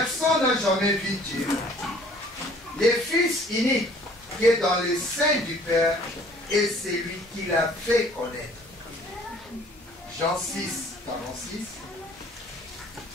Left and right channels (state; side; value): normal; both; correlation 0.54